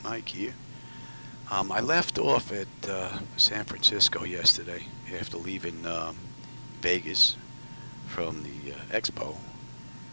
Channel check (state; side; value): inverted; both; correlation -1.00